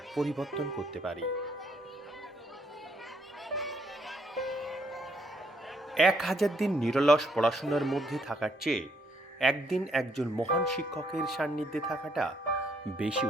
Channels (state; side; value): normal; both; correlation 0.71